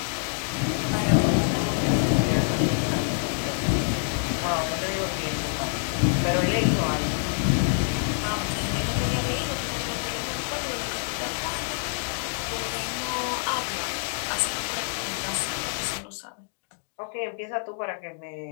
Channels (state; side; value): silent; right; digital silence